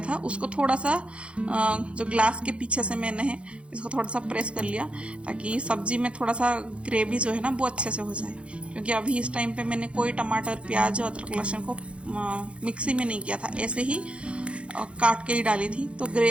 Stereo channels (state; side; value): late; left; 0.059 ms